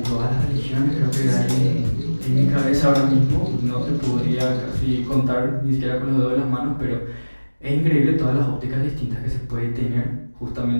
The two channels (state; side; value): inverted; both; correlation -1.00